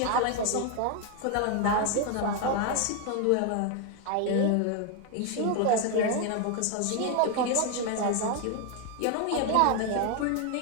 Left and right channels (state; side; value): different; both; correlation 0.01